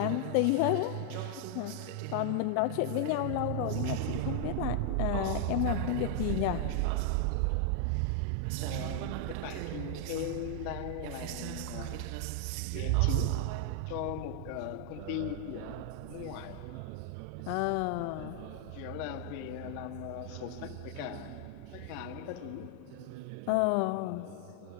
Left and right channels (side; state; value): both; different; correlation 0.00